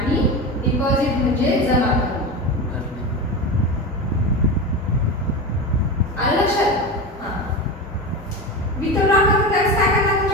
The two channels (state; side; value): normal; both; correlation 0.23